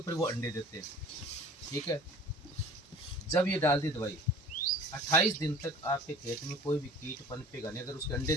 वो अंडे देते हैं, ठीक है। जब ये डाल दी दवाई 28 दिन तक आपके खेत में कोई भी कीट पनपेगा नहीं, अगर उसके अंडे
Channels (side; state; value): both; normal; correlation 0.46